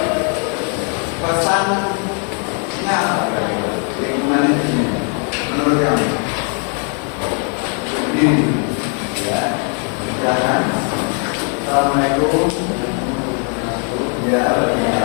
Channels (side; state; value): right; quieter; 38.0 dB